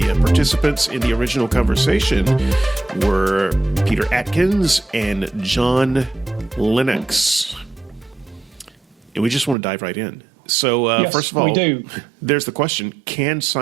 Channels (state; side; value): drops out; left; at 9.6 s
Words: participants in the original conversation were Peter Atkins and John Lennox. And we just want to dive right in. So, Yes, first of all, we do. There's the question, can